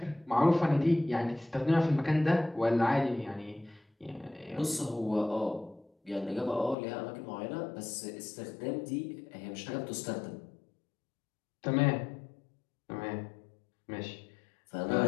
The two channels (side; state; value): right; drops out; at 6.8 s